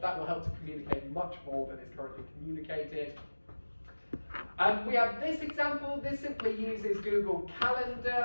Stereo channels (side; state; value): both; inverted; correlation -1.00